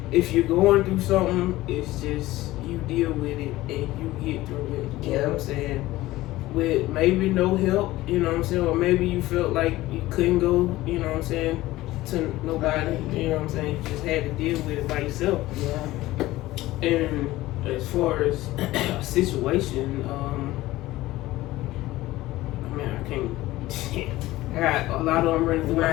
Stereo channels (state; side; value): quieter; right; 17.2 dB